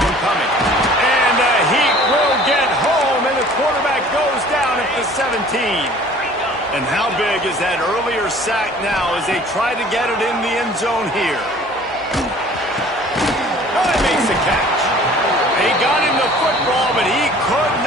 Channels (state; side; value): normal; both; correlation 0.50